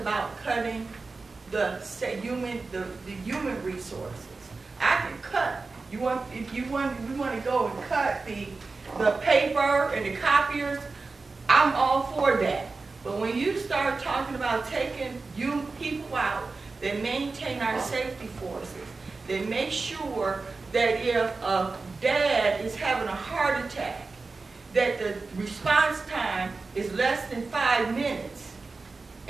cutting the human resources. I can cut. We want to go and cut the paper and the copiers. I'm all for that. But when you start talking about taking people out that maintain our safety forces, that make sure that if a dad is having a heart attack, that the response time is less than 5 minutes,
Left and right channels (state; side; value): quieter; left; 3.9 dB